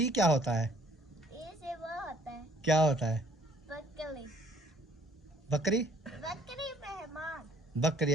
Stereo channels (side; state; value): both; normal; correlation 0.60